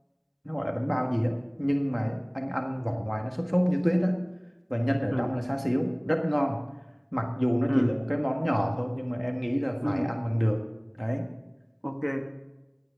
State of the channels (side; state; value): both; identical; correlation 1.00